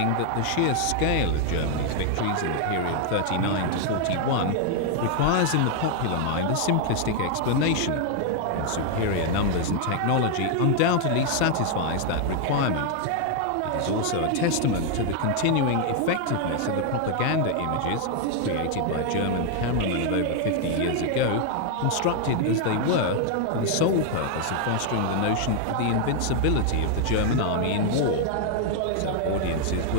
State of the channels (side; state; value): both; different; correlation 0.00